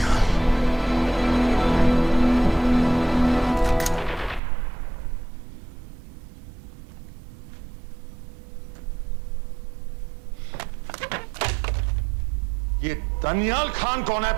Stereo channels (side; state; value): left; drops out; at 4.4 s